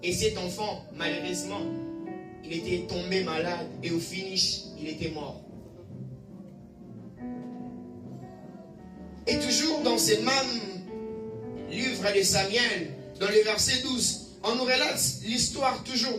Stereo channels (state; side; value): identical; both; correlation 1.00